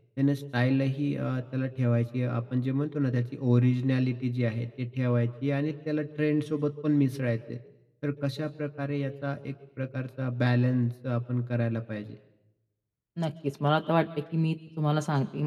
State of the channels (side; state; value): both; identical; correlation 1.00